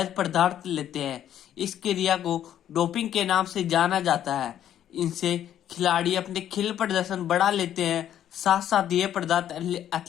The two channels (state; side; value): quieter; right; 10.8 dB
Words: पदार्थ लेते हैं। इस क्रिया को डोपिंग के नाम से जाना जाता है। इनसे खिलाड़ी अपने खेल प्रदर्शन बढ़ा लेते हैं, साथ साथ ये पदार्थ